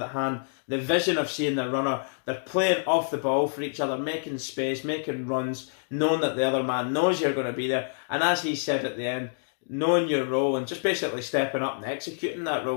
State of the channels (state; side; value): silent; right; digital silence